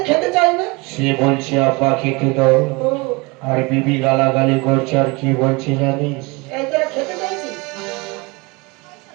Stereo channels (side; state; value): left; quieter; 26.3 dB